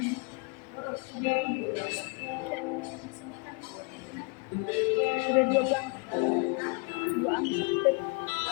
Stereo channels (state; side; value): quieter; right; 31.4 dB